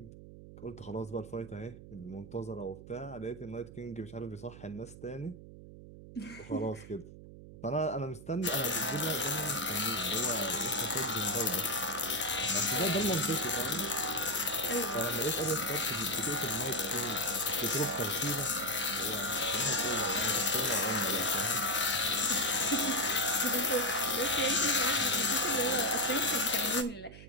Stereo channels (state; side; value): noise; right; hum, 16 dB below the sound